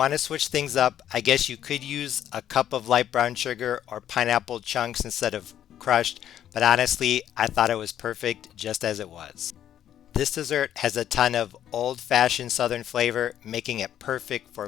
to switch things up, I guess you could use a cup of light brown sugar or pineapple chunks instead of crushed, but honestly, I thought it was perfect just as it was. This dessert has a ton of old-fashioned Southern flavor, making it perfect for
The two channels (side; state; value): right; quieter; 10.8 dB